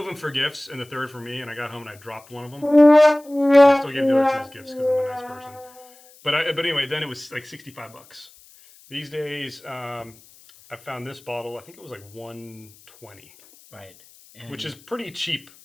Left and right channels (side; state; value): left; noise; hiss, 25 dB below the sound